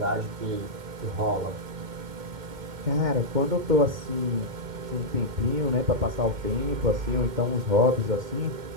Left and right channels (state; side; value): late; left; 2.1 ms